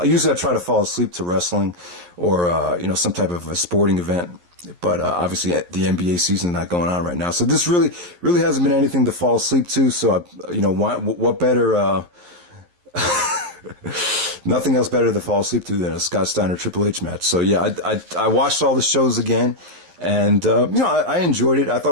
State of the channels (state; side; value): late; left; 11 ms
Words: Usually I try to fall asleep to wrestling or, some type of a sporting event. But obviously the NBA season is not going on right now. So this really hasn't been anything to fall asleep to. So, what better, nothing else better to fall asleep to than a Scott Steiner Triple H match. So, yeah, I watched all the shows again. And, I enjoyed it. I